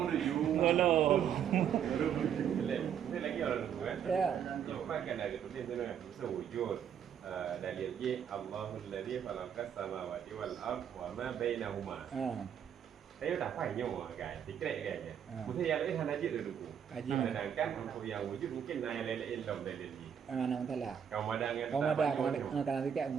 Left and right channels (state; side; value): quieter; left; 8.6 dB